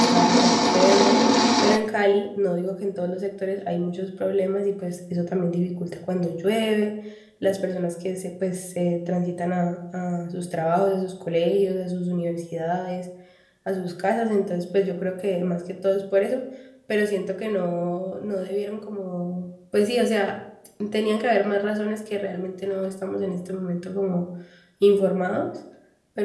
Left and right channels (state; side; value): identical; both; correlation 1.00